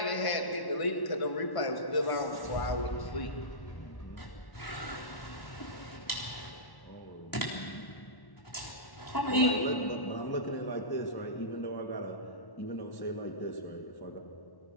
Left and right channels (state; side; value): late; right; 1.1 ms